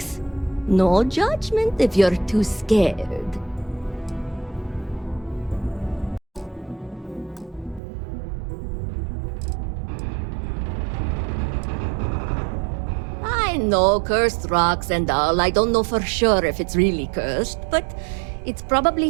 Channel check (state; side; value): drops out; left; at 7.8 s